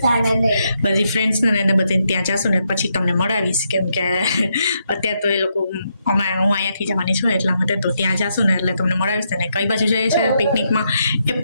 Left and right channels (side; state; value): both; inverted; correlation -0.80